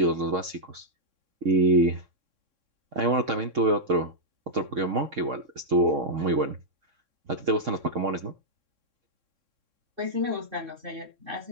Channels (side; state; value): left; late; 3.6 ms